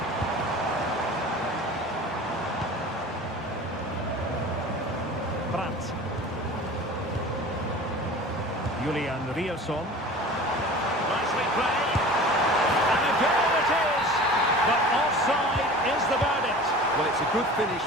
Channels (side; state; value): both; normal; correlation 0.39